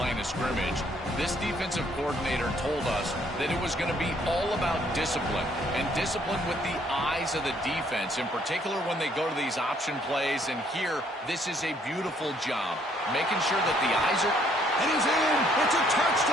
of scrimmage. This defensive coordinator told us that it was going to be all about discipline, and discipline with the eyes of the defense, in particular when they go to these option plays. And here, this is a beautiful job, making sure that the eyes are... And he's in. It's a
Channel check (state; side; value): normal; both; correlation 0.66